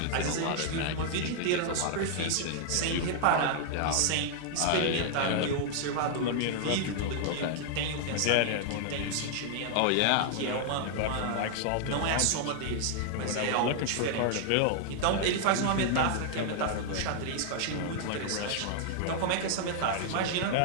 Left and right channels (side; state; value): both; different; correlation 0.00